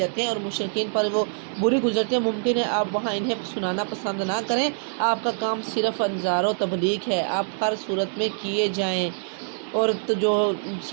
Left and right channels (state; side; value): silent; left; digital silence